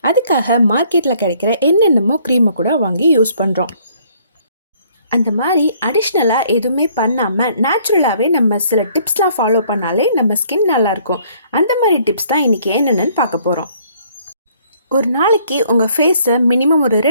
அதுக்காக மார்க்கெட்டில் கிடைக்கிற என்னென்னமோ க்ரீமை கூட வாங்கி யூஸ் பண்ணுறோம். அந்த மாதிரி அடிஷ்னலாக எதுவுமே பண்ணாமல் நேச்சுரலாகவே நம்ம சில டிப்ஸ்லாம் ஃபாலோ பண்ணாலே நம்ம ஸ்கின் நல்லாயிருக்கும். அந்த மாதிரி டிப்ஸ் தான் இன்றைக்கி என்னென்னு பார்க்க போகிறோம். ஒரு நாளைக்கு உங்கள் ஃபேஸை மினிமம் ஒரு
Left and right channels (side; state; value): both; inverted; correlation -0.62